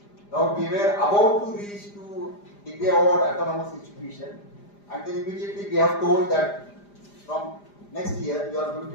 Now we were about to reach to degree award autonomous institution, and then immediately we have told that from next year you are going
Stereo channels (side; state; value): right; late; 5.0 ms